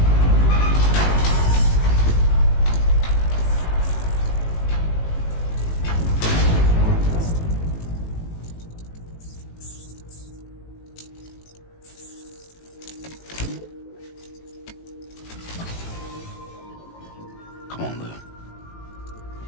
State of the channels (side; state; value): right; late; 18 ms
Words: Come on, Lou.